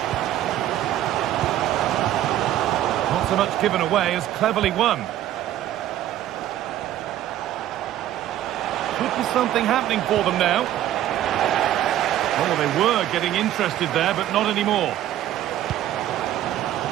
Not so much given away as cleverly won. Could be something happening for them now. Oh, they were getting interested there, but not anymore.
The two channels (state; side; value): quieter; left; 12.6 dB